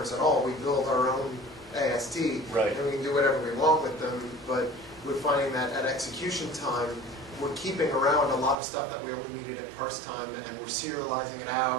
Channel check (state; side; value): drops out; left; at 8.6 s